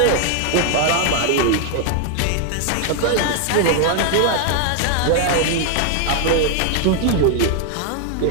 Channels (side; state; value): both; different; correlation 0.00